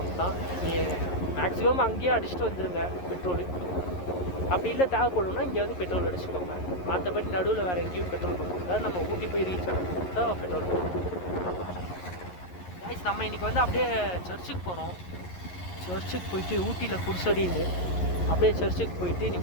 தான். நீங்கள் மேக்ஸிமம் அங்கேயே அடிச்சுட்டு வந்துடுங்க பெட்ரோலு. அப்படி இல்லை தேவைப்படும்னா இங்கே வந்து பெட்ரோல் அடிச்சுக்கோங்க. மற்றபடி நடுவில் வேறு எங்கேயும் பெட்ரோல் பங்க் இருக்காது. நம்ம ஊட்டி போய் ரீச் ஆகும் தான் பெட்ரோல் பங்க். கைஸ், நம்ம இன்றைக்கி வந்து அப்படியே சர்ச்சுக்கு போகிறோம். சர்ச்சுக்கு போயிட்டு ஊட்டியில் புதுசடின்னு அப்படியே சர்ச்சுக்கு போயிட்டு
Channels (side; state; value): right; late; 11 ms